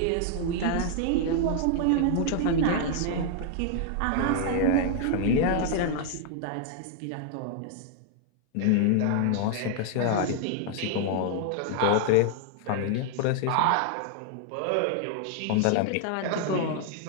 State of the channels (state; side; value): different; both; correlation 0.00